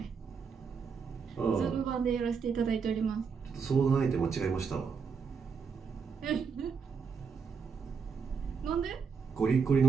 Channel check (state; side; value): quieter; left; 5.8 dB